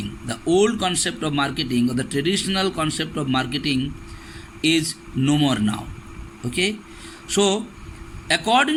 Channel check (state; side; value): identical; both; correlation 1.00